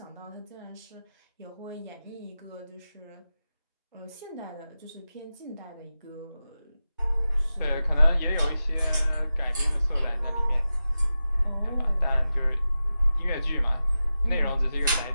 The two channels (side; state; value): both; inverted; correlation -0.93